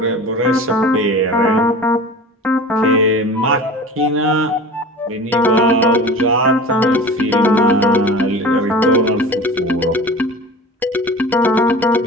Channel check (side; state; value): both; normal; correlation 0.37